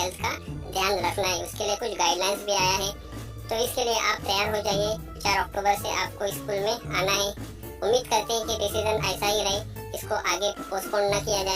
हेल्थ का ध्यान रखना है। उसके लिए कुछ गाइडलाइंस भी आया है, तो इसके लिए आप तैयार हो जाइए। 4 अक्टूबर से आपको स्कूल में आना है। उम्मीद करते हैं कि डिसीजन ऐसा ही रहे, इसको आगे पोस्टपोन न किया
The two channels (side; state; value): both; identical; correlation 1.00